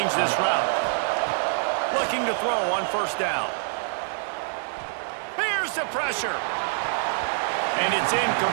this route. Looking to throw on 1st down. Here's the pressure. And it's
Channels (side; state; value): left; silent; 61 dB below the other